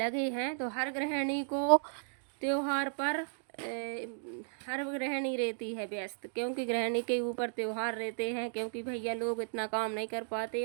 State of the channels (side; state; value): left; silent; digital silence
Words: हैं। तो हर गृहिणी को त्योहार पर हर गृहिणी रहती है व्यस्त, क्योंकि गृहिणी के ऊपर त्योहार रहते हैं, क्योंकि भैया लोग इतना काम नहीं कर पाते